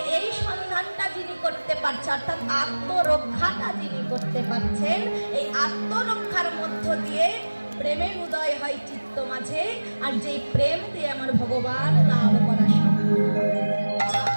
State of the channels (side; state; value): both; inverted; correlation -1.00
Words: এই সন্ধানটা যিনি করতে পারছে, অর্থাৎ আত্মরক্ষাটা যিনি করতে পারছেন, এই আত্মরক্ষার মধ্য দিয়ে প্রেমের উদয় হয় চিত্ত মাঝে, আর যেই প্রেম দিয়ে আমার ভগবান লাভ করা সম্ভব।